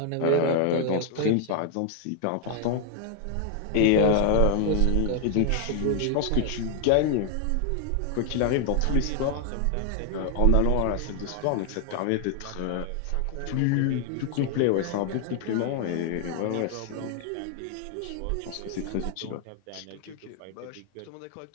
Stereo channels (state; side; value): different; both; correlation 0.00